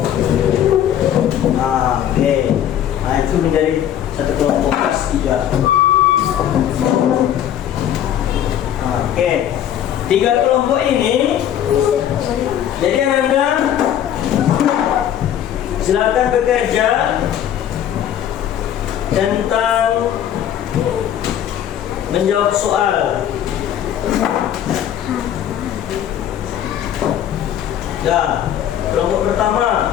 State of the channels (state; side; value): quieter; right; 10.5 dB